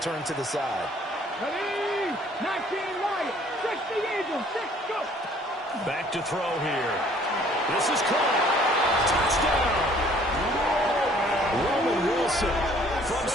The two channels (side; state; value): both; normal; correlation 0.58